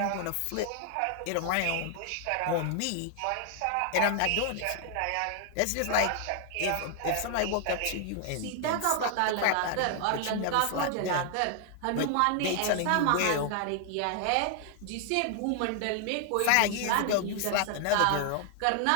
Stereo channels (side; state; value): both; different; correlation 0.00